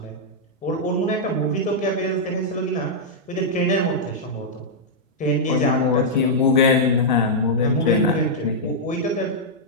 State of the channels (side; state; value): both; normal; correlation -0.07